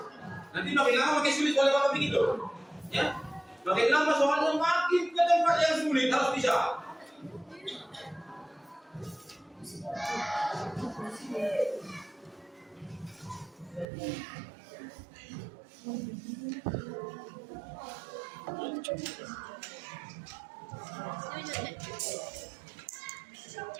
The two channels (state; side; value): drops out; left; at 13.9 s